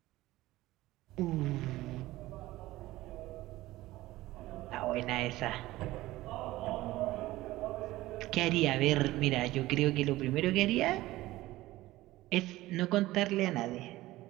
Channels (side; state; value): left; quieter; 17.3 dB